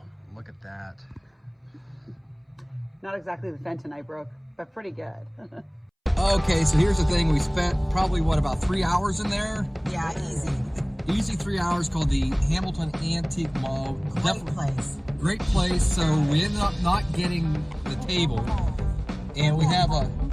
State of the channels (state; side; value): identical; both; correlation 1.00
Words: Look at that. Not exactly the Fenton I broke, but pretty good. Okay, so here's the thing. We spent probably, what, about 3 hours in there? Yeah, easy. Easy 3 hours, called the Hamilton Antique Mall. Great place. Great place. So we ended up not getting the table. And we have a,